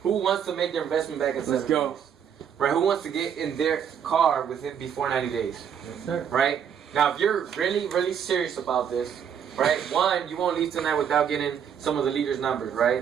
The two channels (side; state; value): left; quieter; 8.2 dB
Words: Who wants to make their investment back in 7 Let's go. days? Right? Who wants to get in their car before 90 days? Right? Now, if you're really, really serious about this, right? One, you won't leave tonight without getting some of the leaders' numbers,